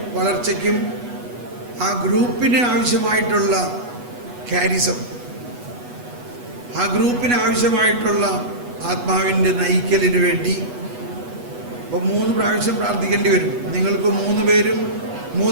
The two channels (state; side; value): late; left; 8.2 ms